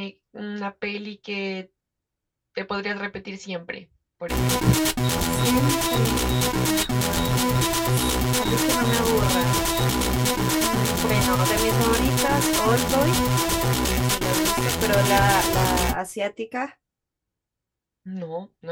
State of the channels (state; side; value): identical; both; correlation 1.00